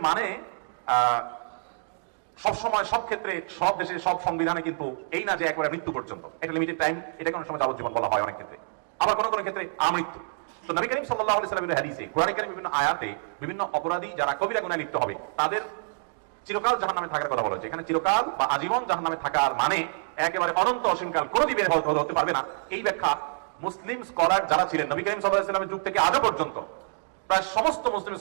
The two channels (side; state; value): left; silent; digital silence